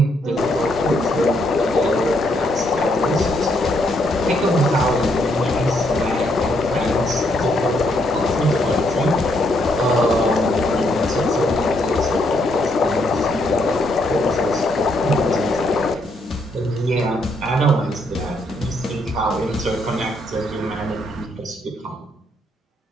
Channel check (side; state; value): both; normal; correlation 0.74